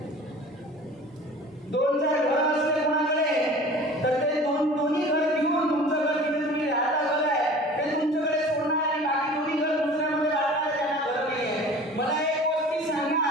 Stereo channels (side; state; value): both; normal; correlation 0.43